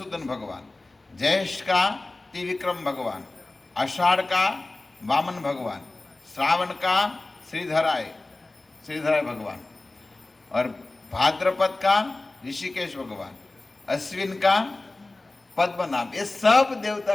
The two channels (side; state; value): right; quieter; 3.0 dB